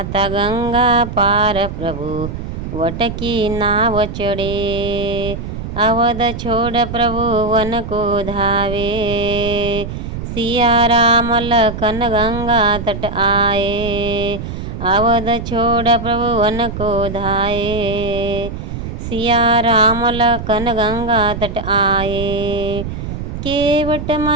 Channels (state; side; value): noise; right; rumble, 7 dB below the sound